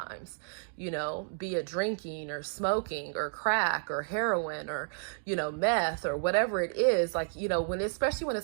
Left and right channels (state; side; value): silent; left; digital silence